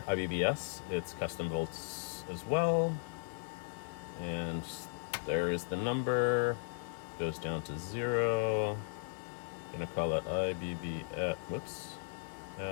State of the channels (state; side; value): silent; right; digital silence